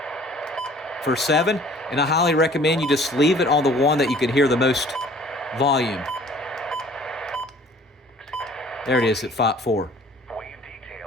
for 7. And I highly recommend you just leave it on the one that you can hear the most volume. There it is at 4.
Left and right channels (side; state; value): both; normal; correlation 0.52